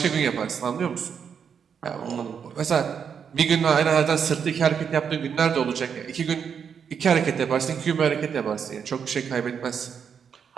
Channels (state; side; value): quieter; left; 7.1 dB